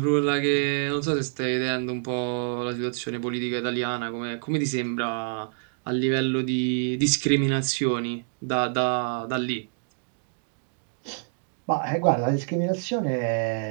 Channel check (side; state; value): left; silent; digital silence